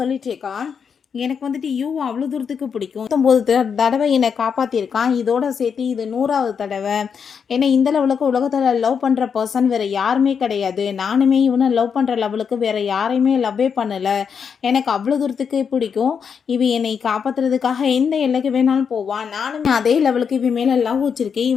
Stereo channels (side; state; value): right; quieter; 6.7 dB